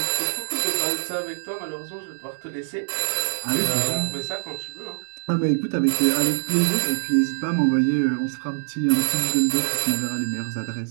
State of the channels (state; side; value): silent; left; digital silence